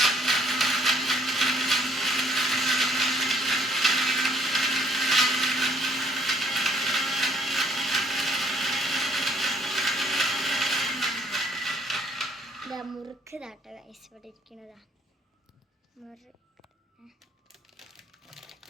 മുറുക്ക് താട്ടോ ഗൈസ്, ഇവിടെ ഇരിക്കുന്നതാ മുറുക്ക്.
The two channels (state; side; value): normal; both; correlation 0.64